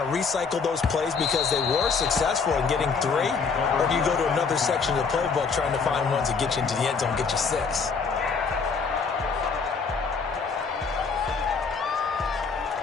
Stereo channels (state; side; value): quieter; right; 5.2 dB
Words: to recycle those plays because they were successful in getting 3? Or do you go to another section of the playbook trying to find ones that get you into the end zone, get you 6?